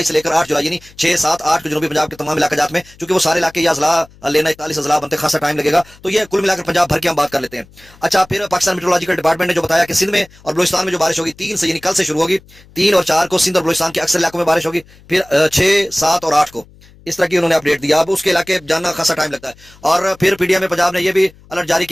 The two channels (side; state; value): left; noise; hum, 26 dB below the sound